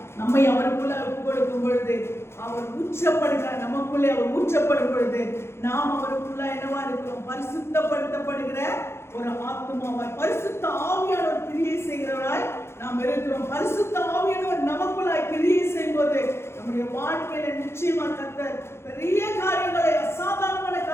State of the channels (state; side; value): late; right; 0.12 ms